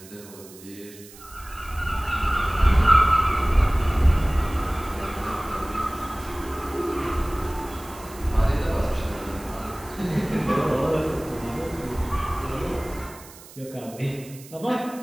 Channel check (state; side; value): noise; right; hiss, 19 dB below the sound